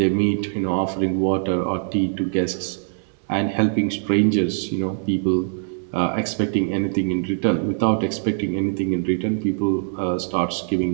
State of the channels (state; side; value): silent; left; digital silence